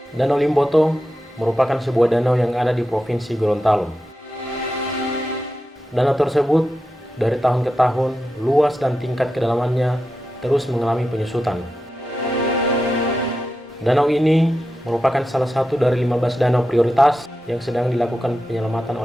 Danau Limboto merupakan sebuah danau yang ada di Provinsi Gorontalo. Danau tersebut dari tahun ke tahun luas dan tingkat kedalamannya terus mengalami penyusutan. Danau ini merupakan salah satu dari 15 danau prioritas yang sedang dilakukan penyelamatan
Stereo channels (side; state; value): both; normal; correlation 0.90